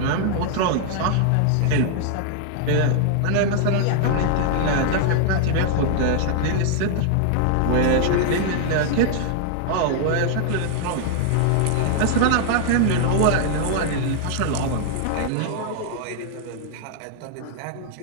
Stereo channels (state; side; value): different; both; correlation -0.01